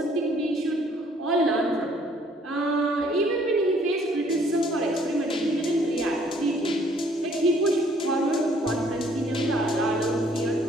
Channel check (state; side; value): normal; both; correlation 0.61